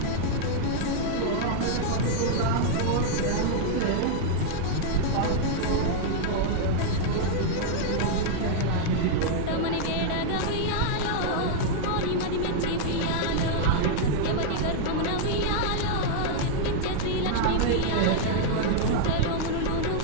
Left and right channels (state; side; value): different; both; correlation -0.01